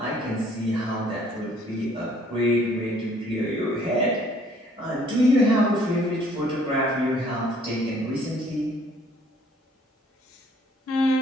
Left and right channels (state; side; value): normal; both; correlation 0.60